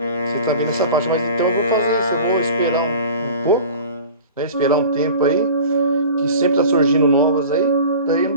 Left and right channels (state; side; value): inverted; both; correlation -0.40